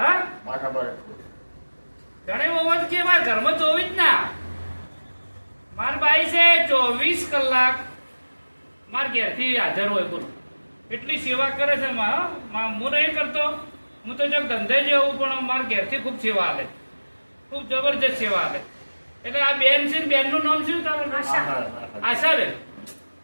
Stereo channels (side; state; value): both; inverted; correlation -1.00